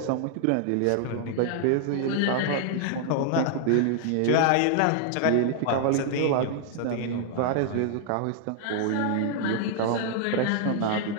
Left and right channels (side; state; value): both; different; correlation -0.01